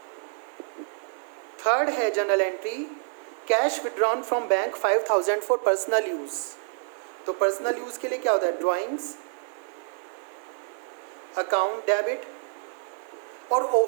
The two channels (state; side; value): silent; left; digital silence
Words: थर्ड है general entry cash withdrawn from bank 5,000 for personal use. तो पर्सनल यूज के लिए क्या होता है? Drawings account debit. और